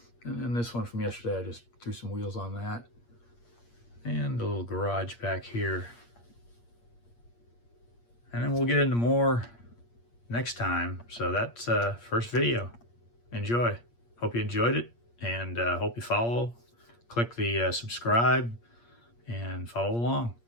And then this one from yesterday, I just threw some wheels on that. And a little garage back here. And then we'll get into more next time. So that's first video. Enjoy. Hope you enjoyed it, and hope you follow. Click the subscribe and follow along.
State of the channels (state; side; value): late; right; 8.5 ms